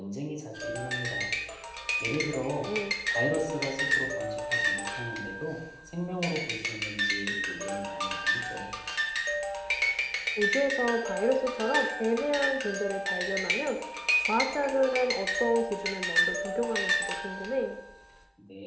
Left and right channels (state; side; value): identical; both; correlation 1.00